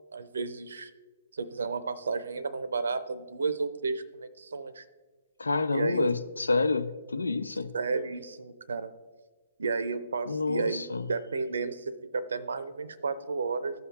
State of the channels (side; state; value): both; inverted; correlation -0.81